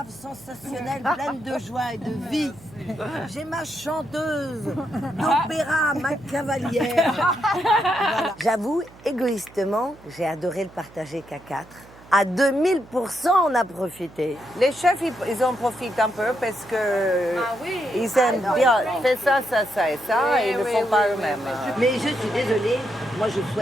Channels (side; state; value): right; noise; hum, 22 dB below the sound